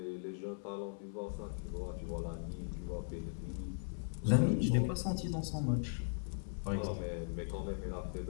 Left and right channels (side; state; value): right; silent; 52 dB below the other